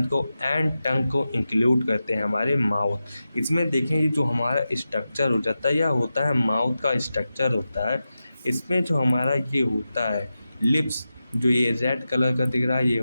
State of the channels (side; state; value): both; inverted; correlation -0.92